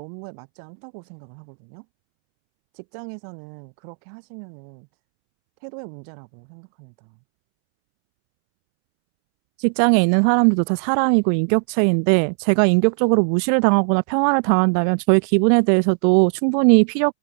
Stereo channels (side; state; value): left; silent; 67 dB below the other